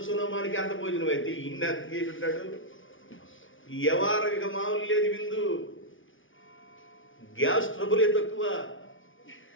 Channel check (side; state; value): right; late; 0.57 ms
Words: సునమానికి అంత భోజనం అయితే ఇన్ని అంత చేసి ఉంటాడు. ఈ వ్యవహారం ఇక మామూలు లేదు. విందు గ్యాస్ ట్రబులే తక్కువ.